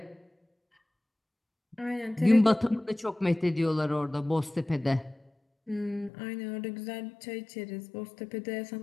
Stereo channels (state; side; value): drops out; right; at 6.1 s